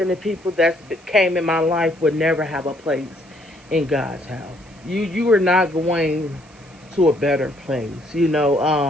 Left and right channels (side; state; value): right; noise; hiss, 28 dB below the sound